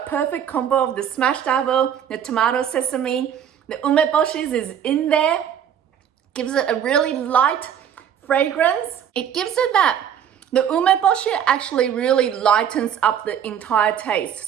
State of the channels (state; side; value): quieter; left; 9.0 dB